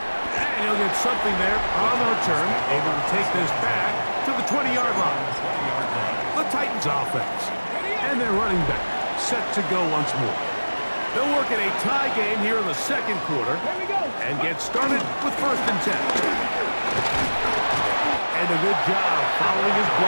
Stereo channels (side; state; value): both; inverted; correlation -1.00